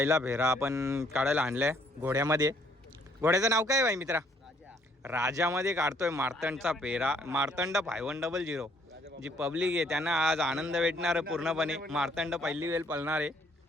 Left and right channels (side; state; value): both; normal; correlation 0.65